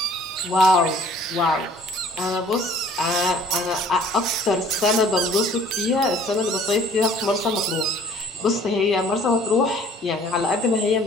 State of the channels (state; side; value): normal; both; correlation 0.54